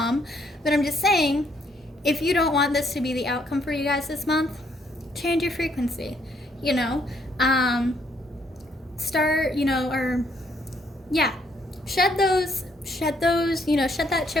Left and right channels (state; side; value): normal; both; correlation 0.70